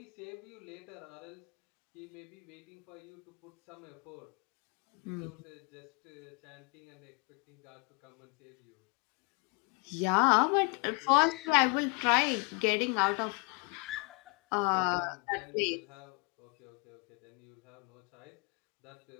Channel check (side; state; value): right; quieter; 31.7 dB